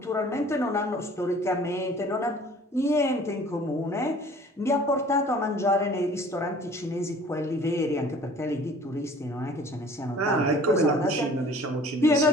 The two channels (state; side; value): normal; both; correlation 0.50